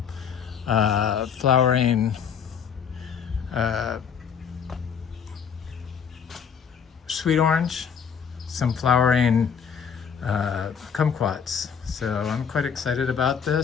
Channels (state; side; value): quieter; right; 7.1 dB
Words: flowering sweet orange, some flowering kumquats. So I'm quite excited about